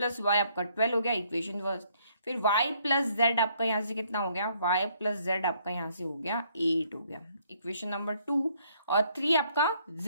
वाई आपका 12 हो गया इक्वेशन फर्स्ट। फिर y प्लस जेड आपका यहाँ से कितना हो गया, y प्लस जेड आपका यहाँ से हो गया 8 हो गया इक्वेशन नंबर 2। और 3 आपका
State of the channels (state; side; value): inverted; both; correlation -0.67